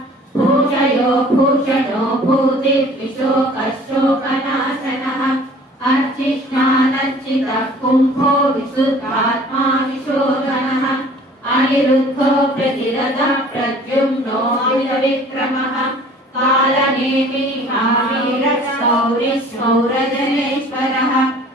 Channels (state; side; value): normal; both; correlation 0.50